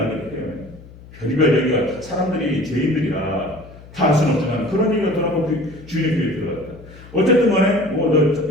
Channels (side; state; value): left; noise; hum, 20 dB below the sound